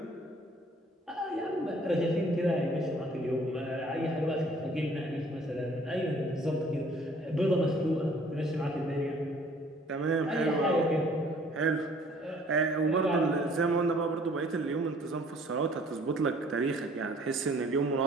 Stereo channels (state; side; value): normal; both; correlation 0.56